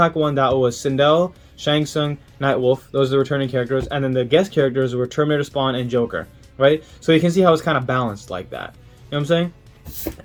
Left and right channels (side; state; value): both; identical; correlation 1.00